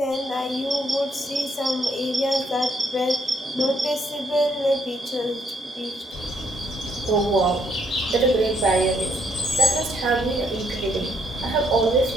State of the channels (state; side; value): normal; both; correlation 0.72